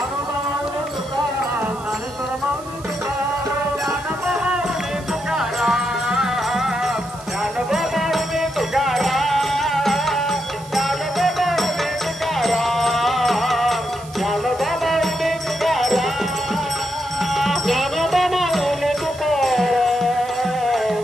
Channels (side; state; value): right; noise; hiss, 20 dB below the sound